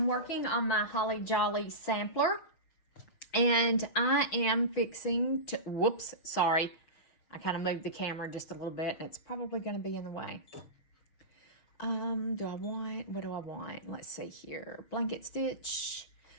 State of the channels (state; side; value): late; right; 6.4 ms